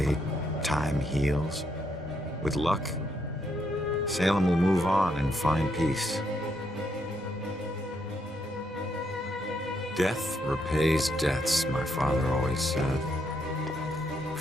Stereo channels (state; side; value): normal; both; correlation 0.77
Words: time heals. With luck, Salem will move on and find peace. Death repays debts, my father always said.